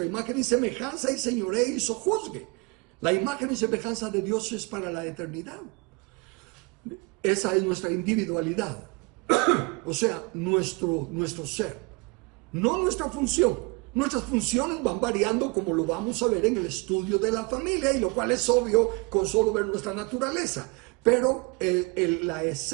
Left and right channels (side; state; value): left; quieter; 28.8 dB